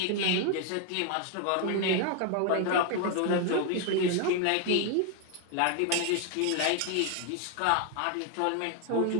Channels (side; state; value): both; different; correlation 0.01